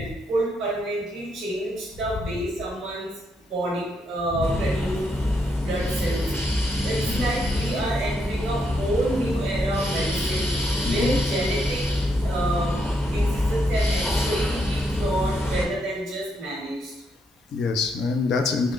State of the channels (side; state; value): both; normal; correlation 0.77